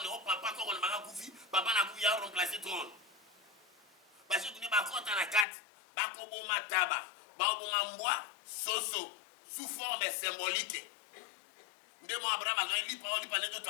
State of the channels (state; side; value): drops out; right; at 5.5 s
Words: oh papa, quand on m'a koufi, papa n'a koufi à remplacer trône. Parce que tu n'es pas content à la carte, Bakobo Mataba, Bakobo Mamboa, Soso, sous forme symbolique. Ndemo Abraham a dit parole par les